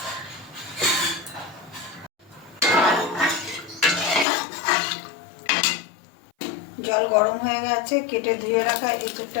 জল গরম হয়ে গেছে, কেটে ধুয়ে রাখা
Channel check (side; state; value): right; drops out; at 4.2 s